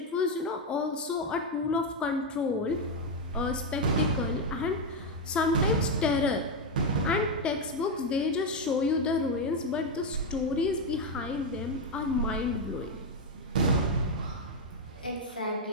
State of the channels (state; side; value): normal; both; correlation 0.05